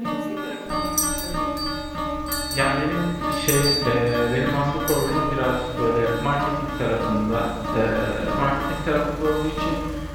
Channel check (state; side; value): identical; both; correlation 1.00